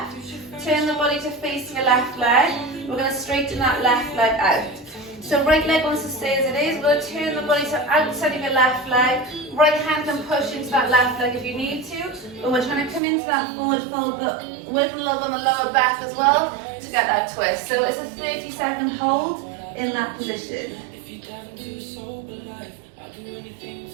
turn the body to face your left leg. We're going to straighten that left leg out. So right leg wants to stay as it is. We're going to turn the body to outside of your left leg. Right hand can push into that left leg if you need to. But we're trying to come into that forward fold, but working a little bit on the lower back as well to get that twist. So it's a 30-second hold in that position.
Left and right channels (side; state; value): left; drops out; at 13.0 s